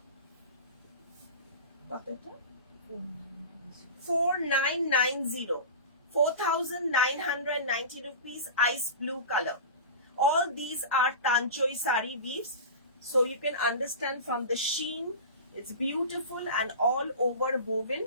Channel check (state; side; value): inverted; both; correlation -0.30